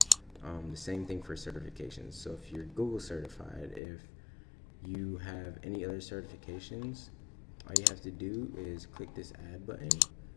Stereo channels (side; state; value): right; drops out; at 3.8 s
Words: The same thing for certifications. So if you're Google certified, if you have any other certifications, all you have to do is click this add button,